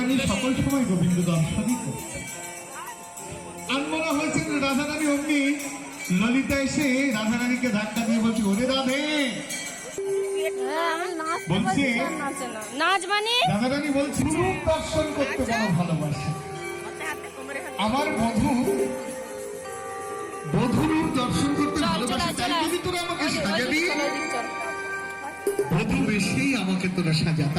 সকল সময় গোবিন্দ দর্শনই করছে। আর মনে হয়েছে রাধারানী অমনি ললিতা এসে রাধারানীকে ধাক্কা দিয়ে বলছে, ওরে রাধে বলছে, নাচ মানে রাধারানী বলছে রূপ দর্শন করতে বড় ভালোবাসে। আমার বধূরূপ দর্শন করতে ভালোবাসে, তাই যদি তোরা আমাকে সাজাবি, বধূ বেশি আমাকে তোরা সাজা।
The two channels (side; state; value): both; identical; correlation 1.00